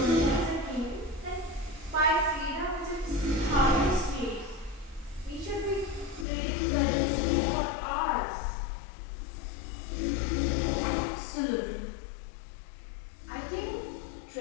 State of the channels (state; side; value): drops out; right; at 6.2 s